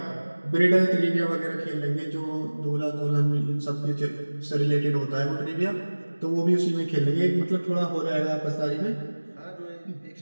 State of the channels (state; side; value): inverted; both; correlation -1.00